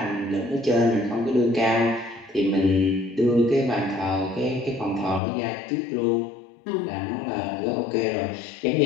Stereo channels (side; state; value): right; drops out; at 5.2 s